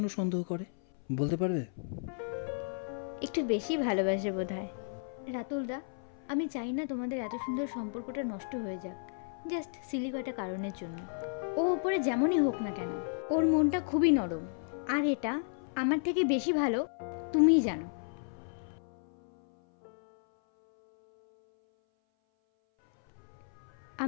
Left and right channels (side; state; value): right; silent; 56 dB below the other